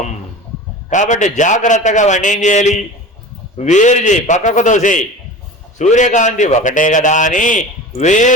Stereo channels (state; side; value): normal; both; correlation 0.34